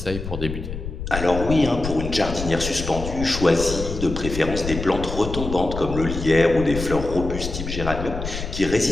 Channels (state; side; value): noise; left; rumble, 6 dB below the sound